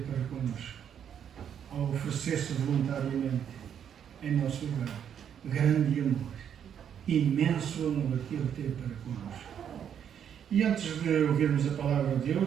para connosco. Ao oferecer-se voluntariamente em nosso lugar. Grande amor. Imenso amor que Ele teve para connosco. E antes de ouvirmos a palavra de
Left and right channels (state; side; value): quieter; left; 8.7 dB